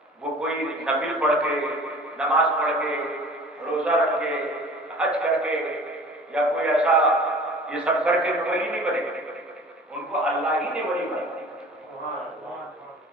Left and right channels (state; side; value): normal; both; correlation 0.44